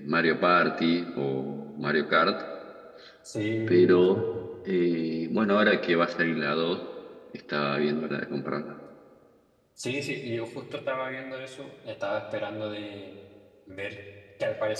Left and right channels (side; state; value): both; identical; correlation 1.00